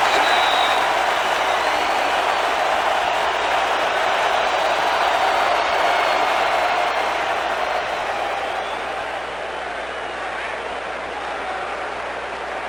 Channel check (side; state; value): right; noise; hum, 22 dB below the sound